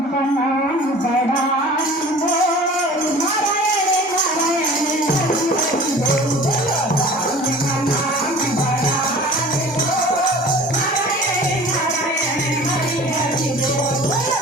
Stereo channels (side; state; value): both; normal; correlation 0.44